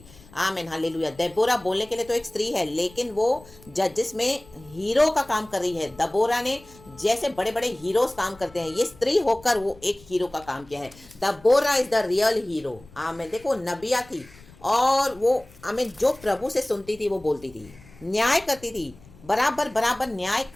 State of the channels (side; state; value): left; noise; rumble, 23 dB below the sound